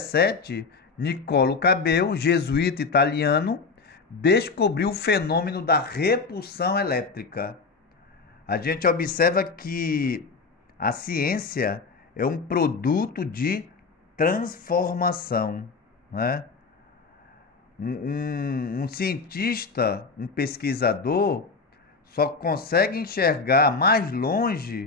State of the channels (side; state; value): right; quieter; 4.5 dB